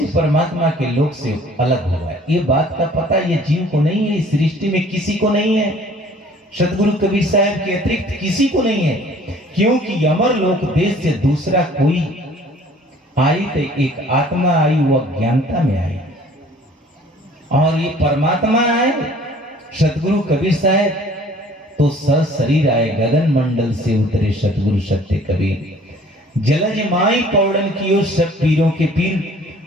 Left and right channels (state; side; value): normal; both; correlation 0.53